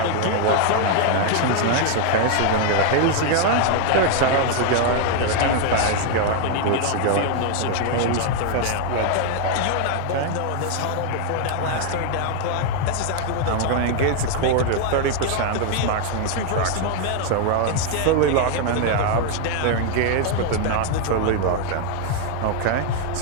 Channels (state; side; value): different; both; correlation 0.00